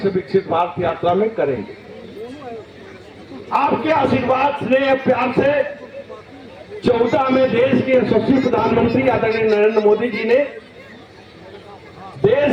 विकसित भारत यात्रा में करेंगे। आपके आशीर्वाद स्नेह प्यार से 14 में देश के यशस्वी प्रधानमंत्री आदरणीय नरेंद्र मोदी जी ने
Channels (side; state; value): both; identical; correlation 1.00